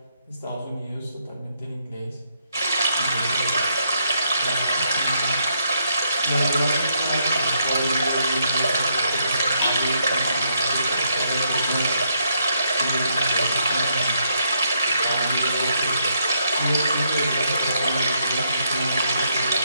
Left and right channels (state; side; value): inverted; both; correlation -0.75